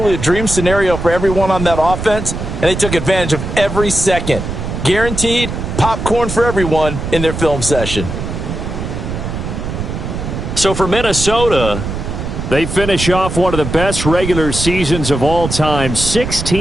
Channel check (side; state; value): right; noise; rumble, 5 dB below the sound